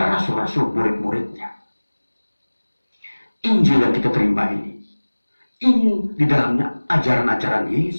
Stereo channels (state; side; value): inverted; both; correlation -1.00